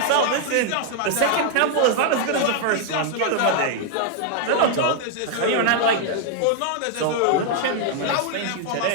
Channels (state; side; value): different; both; correlation 0.00